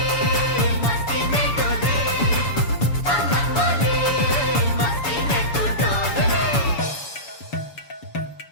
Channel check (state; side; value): late; right; 7.0 ms